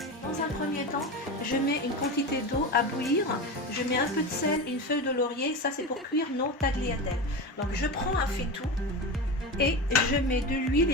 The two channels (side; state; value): both; normal; correlation 0.24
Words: Dans un premier temps, je mets une quantité d'eau à bouillir, je mets un peu de sel et une feuille de laurier, ça c'est pour cuire nos tagliatelles. Donc je prends un faitout et je mets de l'huile